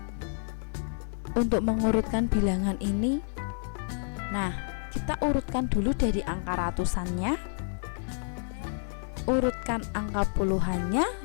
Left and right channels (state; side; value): silent; right; 58 dB below the other